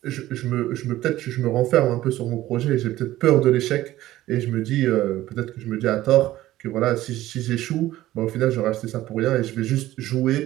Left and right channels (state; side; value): quieter; left; 15.3 dB